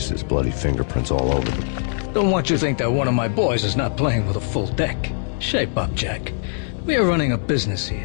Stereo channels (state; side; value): silent; right; digital silence